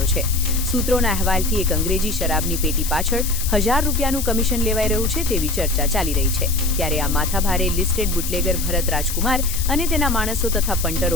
છે। સૂત્રોના અહેવાલથી એક અંગ્રેજી શરાબની પેટી પાછળ 1000 રૂપિયાનું કમિશન લેવાઈ રહ્યું છે તેવી ચર્ચા ચાલી રહી છે। ત્યારે આ માથાભારે લિસ્ટેડ બુટલેગર ભરત રાજકુમાર અને તેના માણસો તથા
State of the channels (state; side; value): noise; left; hiss, 6 dB below the sound